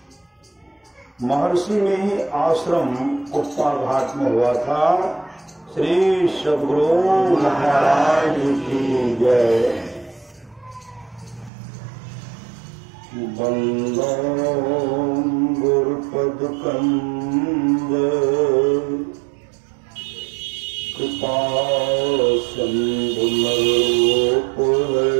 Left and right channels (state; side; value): drops out; left; at 11.5 s